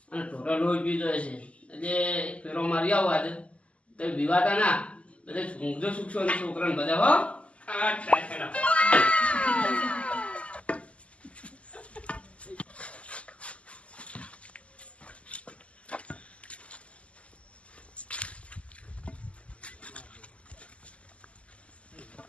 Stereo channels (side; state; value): right; late; 0.061 ms